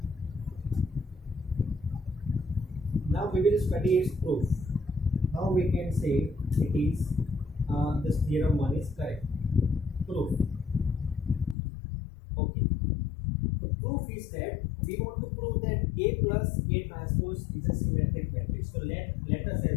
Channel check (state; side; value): drops out; right; at 11.6 s